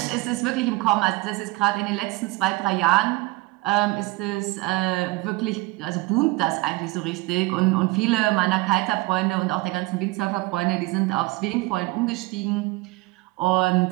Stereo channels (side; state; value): left; quieter; 21.5 dB